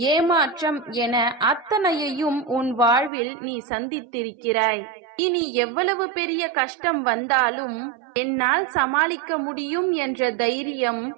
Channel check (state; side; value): drops out; left; at 3.1 s